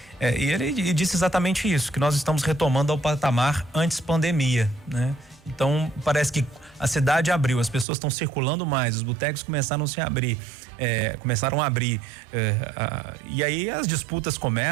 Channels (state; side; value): drops out; left; at 7.9 s